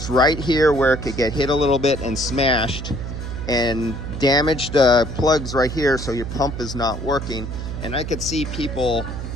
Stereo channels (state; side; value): noise; right; hum, 6 dB below the sound